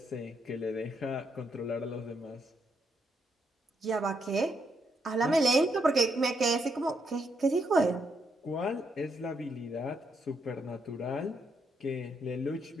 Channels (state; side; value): normal; both; correlation 0.77